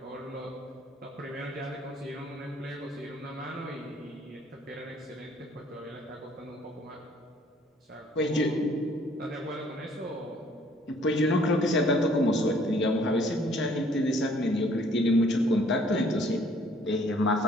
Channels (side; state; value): both; normal; correlation 0.60